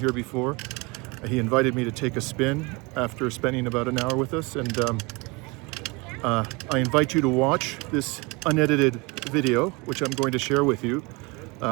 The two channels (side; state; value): left; quieter; 26.9 dB